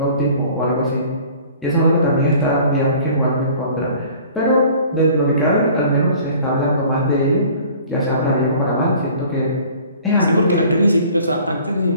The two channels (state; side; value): inverted; both; correlation -0.50